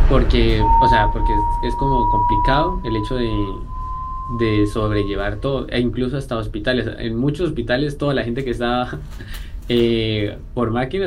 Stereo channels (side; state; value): both; identical; correlation 1.00